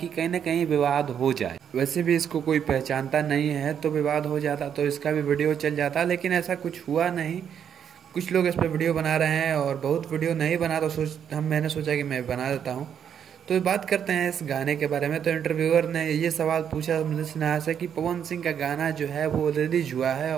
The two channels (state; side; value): quieter; left; 8.4 dB